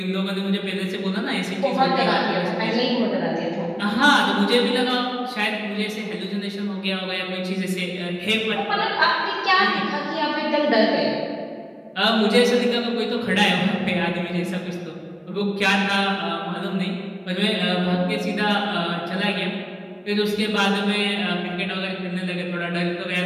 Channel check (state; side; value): identical; both; correlation 1.00